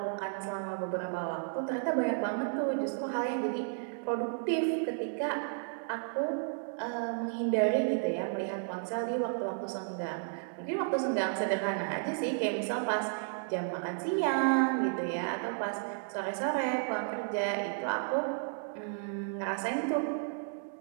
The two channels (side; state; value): left; silent; digital silence